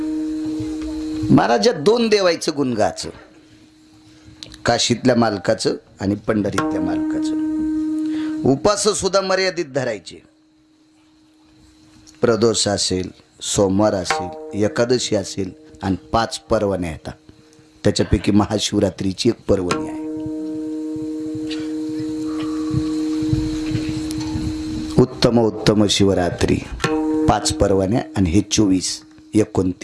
महाराज. दोन देवायचं गुण गाचं, काशीतल्या मालकाचं आणि पंढरीतल्या मालकाचं. उपास सुद्धा मर्यादित धरायचे. प्रदोष असेल, सोमवार असेल, एकादशी असेल आणि 5 पर्वण्या येतात. त्याच्यापैकी महाशिवरात्रीची एक पर्वणी आहे. उत्तम उत्तम शिवरात्री 5 पर्वण्या आणि हे 24,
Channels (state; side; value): identical; both; correlation 1.00